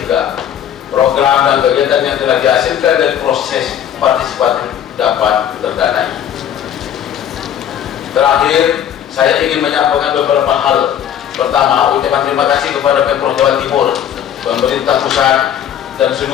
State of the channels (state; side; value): quieter; right; 9.8 dB